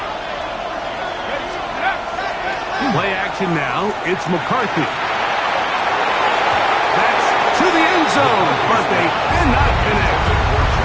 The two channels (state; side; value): identical; both; correlation 1.00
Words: Play action now. It's McCarthy. That's to the end zone, but they cannot connect.